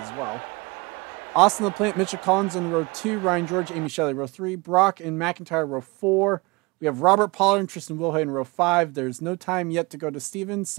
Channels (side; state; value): left; quieter; 25.8 dB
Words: as well. Austin LaPlante, Mitchell Collins in row 2, Ryan George, Amy Shelley row 3, Brock and McIntyre row 4. We have Robert Pollard and Tristan Wilhoit in row 5. There's no time yet to go to Stevens,